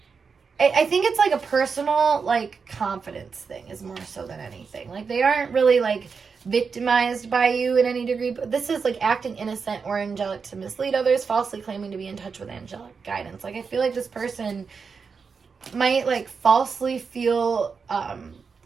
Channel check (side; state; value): left; quieter; 5.4 dB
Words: I think it's like a personal like confidence thing is more so than anything. Like they aren't really like victimized by you in any degree, but this is like acting innocent or angelic to mislead others, falsely claiming to be in touch with angelic guidance. Like I feel like this person might like falsely feel